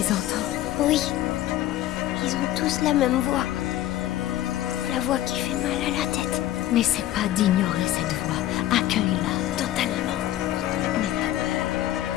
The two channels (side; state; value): right; quieter; 13.7 dB